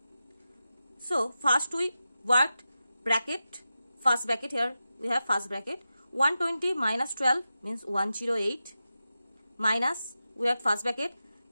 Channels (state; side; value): inverted; both; correlation -0.92